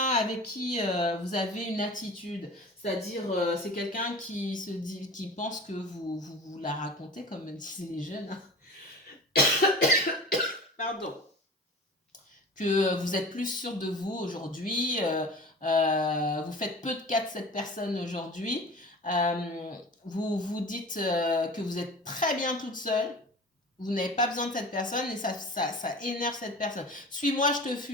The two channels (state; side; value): normal; both; correlation 0.37